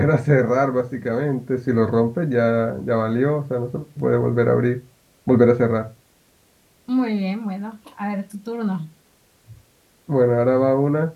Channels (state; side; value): identical; both; correlation 1.00